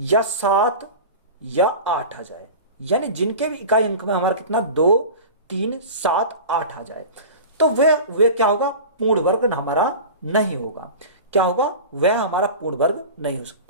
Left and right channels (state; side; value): inverted; both; correlation -0.32